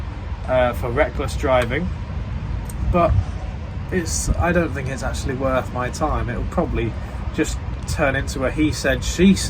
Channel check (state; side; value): identical; both; correlation 1.00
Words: for reckless driving, but I don't think it's actually worth my time. It'll probably just turn into a he said, she